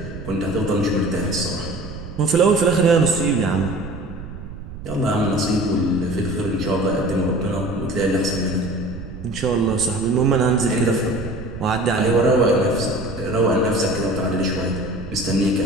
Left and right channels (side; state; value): right; noise; rumble, 12 dB below the sound